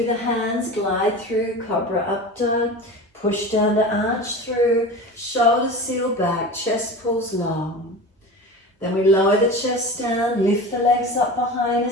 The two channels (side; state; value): both; normal; correlation 0.32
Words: the hands, glide through, cobra up dog. Push down to arch through, shoulders seal back, chest pulls long. Then we lower the chest down, lift the legs up behind